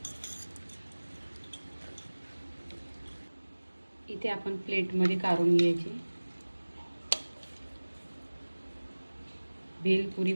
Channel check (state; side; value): inverted; both; correlation -1.00